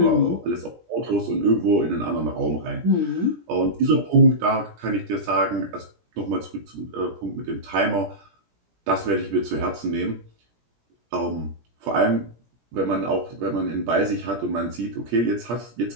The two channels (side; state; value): left; late; 17 ms